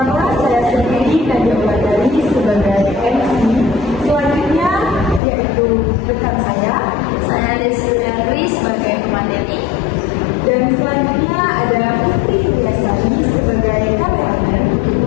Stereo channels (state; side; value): drops out; right; at 5.2 s